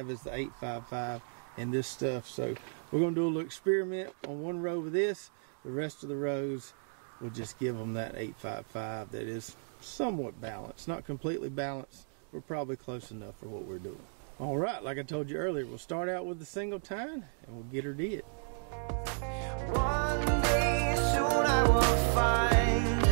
is the 855 and this stuff. So we're going to do a little experiment on one row with this. The rest of the rows, we'll just give them that 855 that is somewhat balanced. Not completely balanced, but probably close enough for what we're doing. All right, like I told you earlier, we'll start out with the single tine and we'll get her did. One day soon I will find,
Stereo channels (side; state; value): left; silent; digital silence